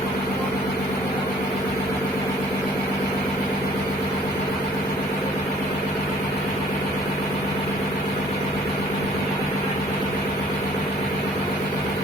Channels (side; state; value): right; noise; rumble, 24 dB below the sound